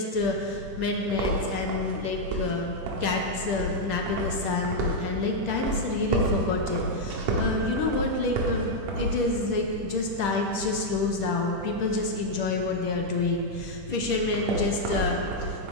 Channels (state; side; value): late; left; 10 ms